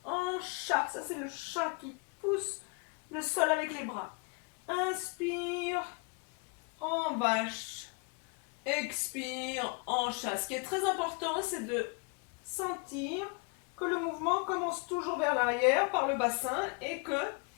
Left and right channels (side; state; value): right; quieter; 32.5 dB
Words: En chat. Ça, c'est le chat qui pousse le sol avec les bras. Inspire. En vache. expire, hanche. Ce qui est très important, c'est de sentir que le mouvement commence toujours vers l'arrière par le bassin et que